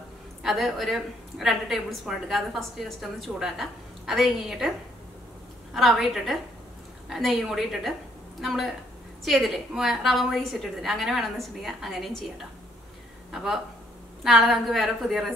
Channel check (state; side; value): normal; both; correlation 0.68